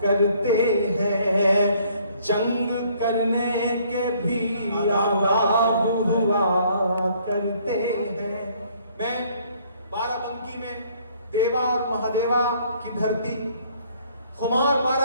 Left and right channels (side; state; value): both; inverted; correlation -0.62